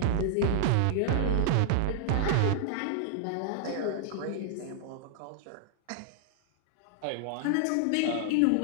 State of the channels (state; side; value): different; both; correlation 0.00